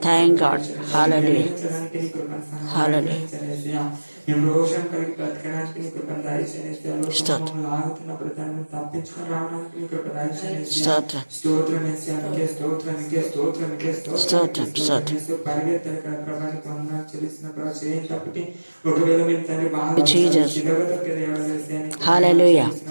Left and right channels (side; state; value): both; inverted; correlation -1.00